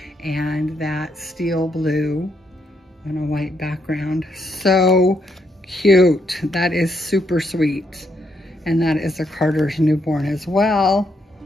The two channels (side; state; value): both; normal; correlation 0.76